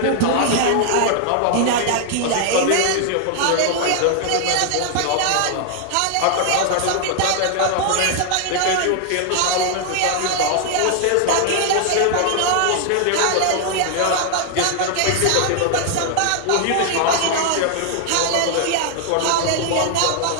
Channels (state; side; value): different; both; correlation 0.00